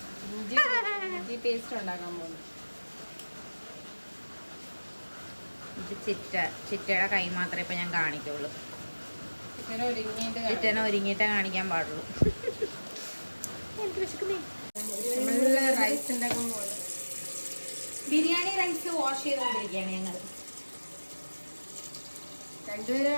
പേസ്റ്റ് ഉണ്ടാക്കാൻ പോകുന്നു. ഇത് ചിറ്റയുടെ കൈ മാത്രമേ ഇപ്പൊ ഞാൻ കാണിക്കുള്ളൂ. ചിറ്റനെ ഒരുങ്ങിയിട്ടേ കാണിക്കാൻ പാടുള്ളൂ. റൈസ് ഉണ്ടാക്കാൻ പോകുന്നു. ബിരിയാണി റൈസ് വാഷ് ചെയ്തുകൊണ്ടിരിക്കുകയാണ് ഞങ്ങൾ. രണ്ടുപേര്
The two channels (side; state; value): both; inverted; correlation -1.00